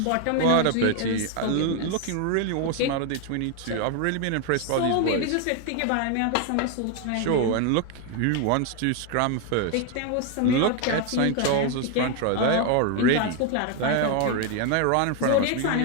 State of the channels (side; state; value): both; different; correlation 0.01